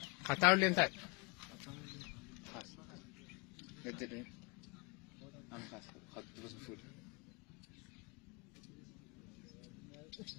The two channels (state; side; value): quieter; right; 27.8 dB